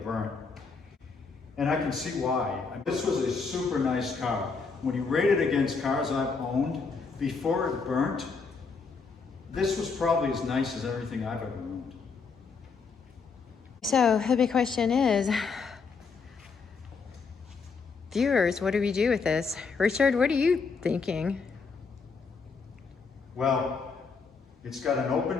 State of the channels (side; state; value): right; quieter; 4.9 dB